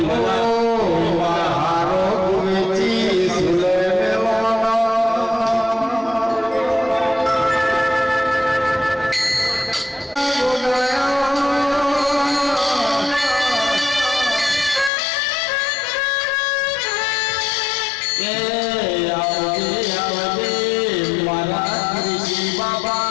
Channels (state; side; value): drops out; right; at 14.9 s